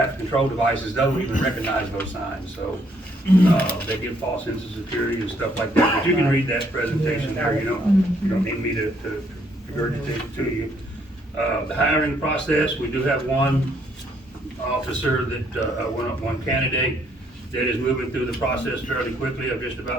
Control Devices, doesn't even recognize those signs, so they give false sense of security and stuff like that. But you can read that presentation there, you don't need me to regurgitate it to you. The hiring process, we do have one officer that, one candidate that is moving through the process fairly quickly. I've just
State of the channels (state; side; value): normal; both; correlation 0.69